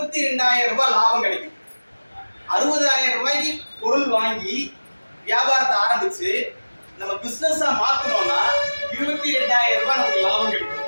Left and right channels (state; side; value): inverted; both; correlation -1.00